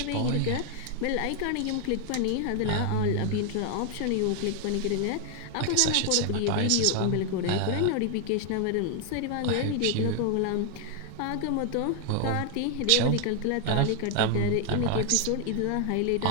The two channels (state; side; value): different; both; correlation 0.00